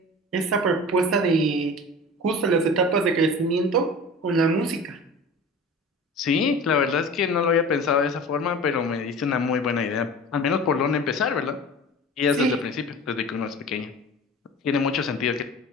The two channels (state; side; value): normal; both; correlation 0.37